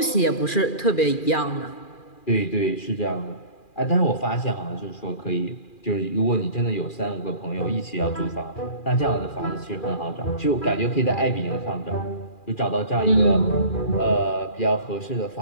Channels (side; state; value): right; late; 2.4 ms